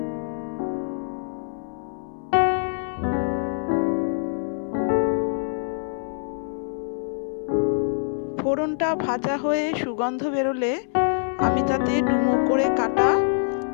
ফোড়নটা ভাজা হয়ে সুগন্ধ বেরোলে আমি তাতে ডুমো করে কাটা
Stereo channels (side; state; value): right; silent; 62 dB below the other